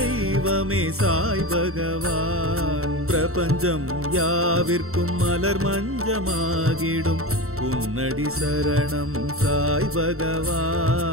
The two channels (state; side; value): late; left; 0.63 ms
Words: சாய் பகவான் பிரபஞ்சம் யாவிற்கும் மலர் மஞ்சமாகிடும் உன்னடி சரணம் சாய்